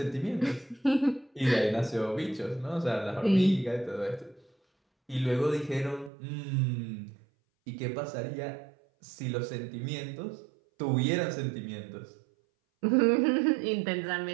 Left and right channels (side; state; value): left; drops out; at 6.1 s